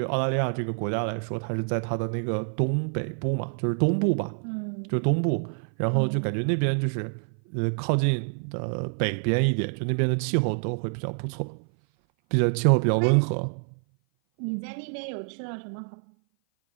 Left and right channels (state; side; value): silent; left; 57 dB below the other